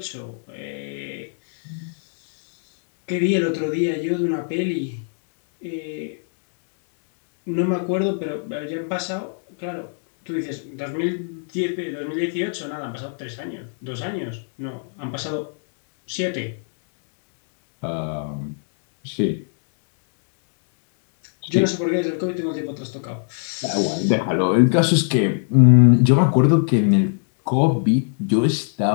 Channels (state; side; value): silent; right; digital silence